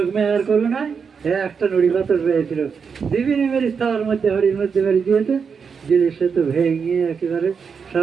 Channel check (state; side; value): quieter; left; 6.1 dB